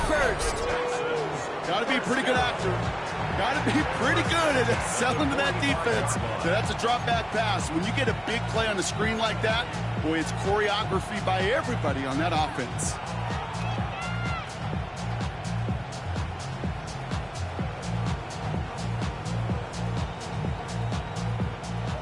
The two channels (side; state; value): both; identical; correlation 1.00